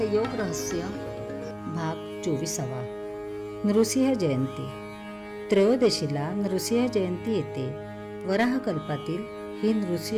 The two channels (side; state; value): both; identical; correlation 1.00